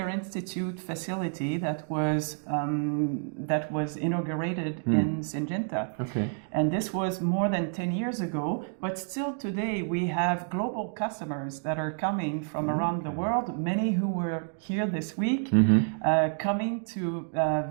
Institute facility that was inaugurated in Syngenta. And this was more than 10 years ago, but still today we have global customers that are coming from around the world, many who were here this week, coming to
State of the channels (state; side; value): silent; left; 59 dB below the other